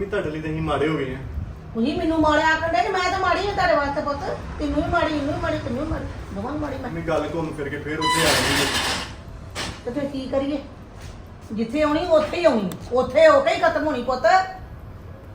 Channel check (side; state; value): both; identical; correlation 1.00